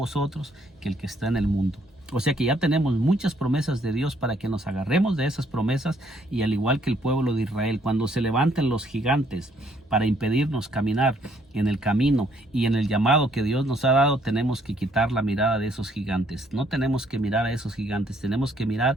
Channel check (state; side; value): normal; both; correlation 0.67